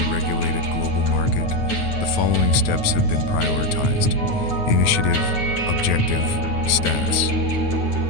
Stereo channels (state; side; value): late; right; 9.4 ms